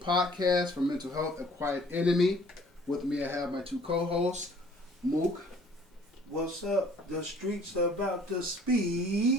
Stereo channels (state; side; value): normal; both; correlation 0.54